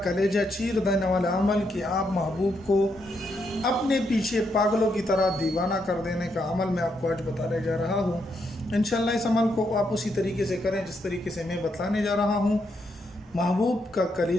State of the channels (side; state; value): both; normal; correlation 0.79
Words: चीर देने वाला अमल कि आप महबूब को अपने पीछे पागलों की तरह दीवाना कर देने का अमल मैं आपको आज बताने जा रहा हूँ। इंशाअल्लाह इस अमल को आप उसी तरीके से करें जिस तरीके से मैं बताने जा रहा हूँ। महबूब का